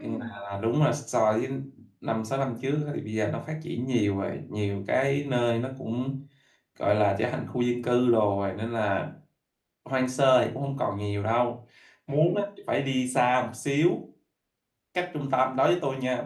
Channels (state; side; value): identical; both; correlation 1.00